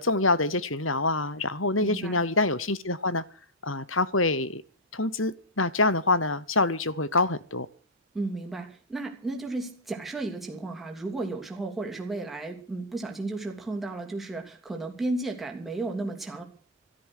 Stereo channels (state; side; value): normal; both; correlation -0.12